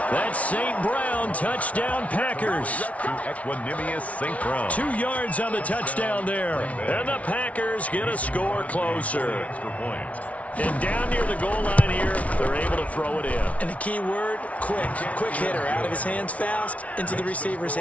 That's St. Brown. Touchdown, Packers. To Equanimous St. Brown. 2 yards on the touchdown there. And the Packers get a score closer. Extra point. And down near the goal line here, they're able to throw it in. And the key word, quick. Quick hitter. Out of his hands fast, into the receiver's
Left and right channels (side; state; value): right; late; 0.066 ms